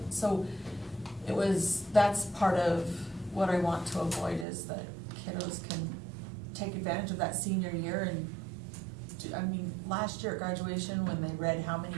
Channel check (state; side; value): drops out; left; at 4.5 s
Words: So that's part of what I want to avoid, is that kiddos can take advantage of that senior year and last year at graduation, when they read how many